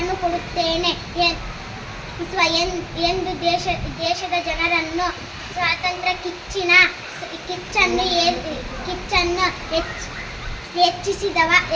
ಕೊಡುತ್ತೇನೆ ಎಂದು ದೇಶದ ಜನರನ್ನು ಸ್ವಾತಂತ್ರ್ಯ ಕಿಚ್ಚನ್ನು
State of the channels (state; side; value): identical; both; correlation 1.00